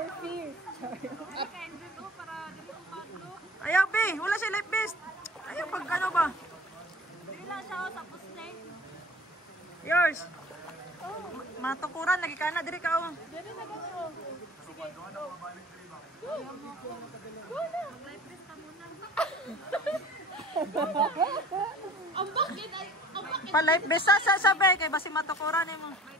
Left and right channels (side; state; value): both; normal; correlation 0.46